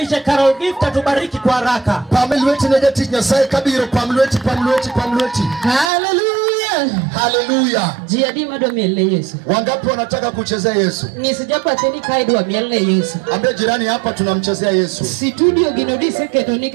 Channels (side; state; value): left; drops out; at 5.9 s